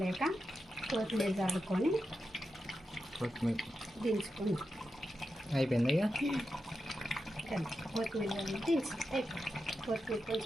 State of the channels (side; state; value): both; normal; correlation 0.89